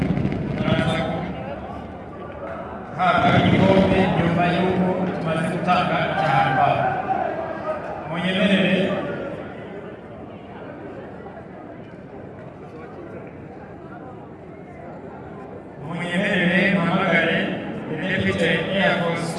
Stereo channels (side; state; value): both; identical; correlation 1.00